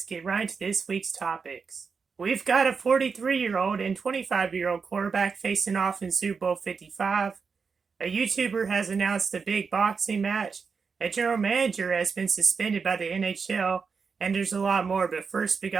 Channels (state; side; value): quieter; left; 5.4 dB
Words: get right into this week's topics. We've got a 43-year-old and 25-year-old quarterback facing off in Super Bowl 55. A YouTuber has announced a big boxing match. A general manager has been suspended by the NHL, and there's a lot more. But first, we